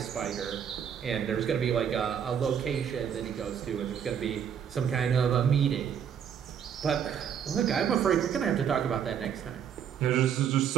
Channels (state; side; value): quieter; left; 8.2 dB